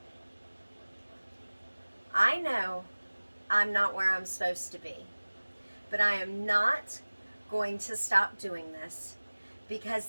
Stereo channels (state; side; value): inverted; both; correlation -1.00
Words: I know I'm not where I'm supposed to be, but I am not going to stop doing this because